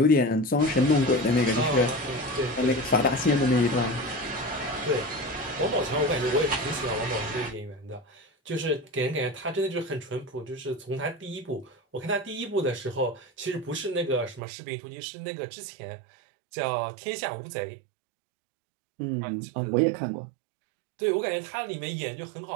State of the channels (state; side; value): drops out; left; at 14.4 s